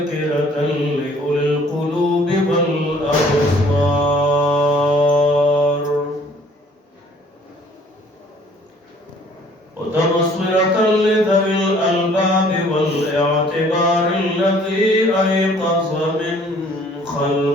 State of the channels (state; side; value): normal; both; correlation 0.57